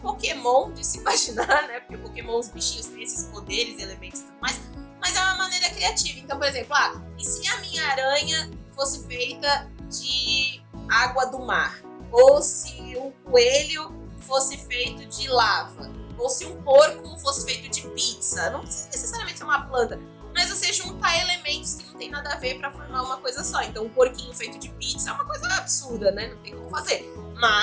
de se imaginar, né? Porque Pokémon, os bichinhos têm esses poderes, elementos e tudo mais. Mas é uma maneira criativa. Então, por exemplo, e se a minha aranha fosse feita de água do mar? Ou se um coelho fosse feito de lava? Ou se um porco fosse feito de pizza? Não precisa necessariamente ser uma planta, mas você juntar elementos que não tem nada a ver para formar uma coisa só. Então, um porquinho feito de pizza é uma coisa absurda, né? Não tem como fazer.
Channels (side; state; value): both; identical; correlation 1.00